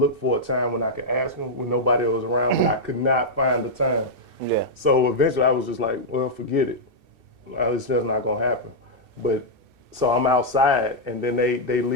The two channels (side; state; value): left; late; 2.7 ms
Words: for a time when I could ask him when nobody was around, but I could not find the time. Yeah. So eventually I was just like, well, forget it. It's just not gonna happen. But so I'm outside and then they